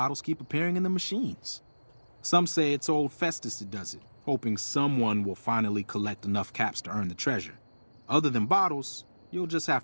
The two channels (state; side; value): inverted; both; correlation -1.00